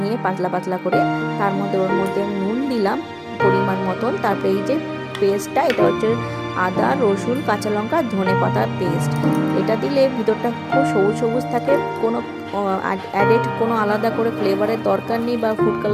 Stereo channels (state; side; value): identical; both; correlation 1.00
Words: নিয়ে পাতলা পাতলা করে। তার মধ্যে ওর মধ্যে আমি নুন দিলাম পরিমাণ মতন। তারপরে এই যে পেস্টটা, এটা হচ্ছে আদা, রসুন, কাঁচা লঙ্কা, ধনে পাতার পেস্ট। এটা দিলে ভিতরটা খুব সবুজ সবুজ থাকে, কোনো অ্যাডেড কোনো আলাদা করে ফ্লেভারের দরকার নেই বা ফুড